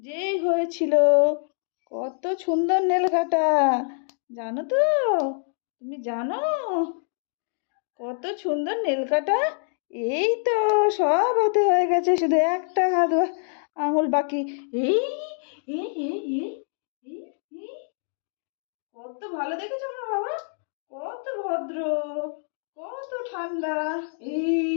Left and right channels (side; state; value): right; silent; digital silence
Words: হয়েছিল। কত সুন্দর নেল কাঁটা, জানো তো? তুমি জানো কত সুন্দর নেল কাঁটা? এই তো সব হাতে হয়ে গেছে, শুধু একটা হাত আঙুল বাকি। এই এই এই এই এই এই, কত ভালো দেখেছো আমার বাবা, কত ভদ্র, কত ঠান্ডা।